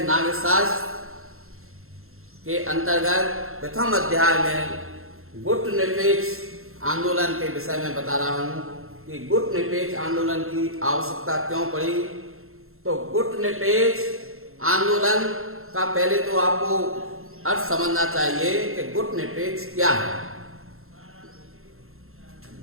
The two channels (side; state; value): left; late; 0.62 ms